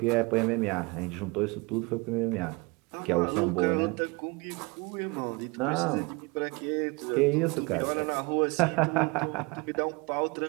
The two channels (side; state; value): left; quieter; 27.0 dB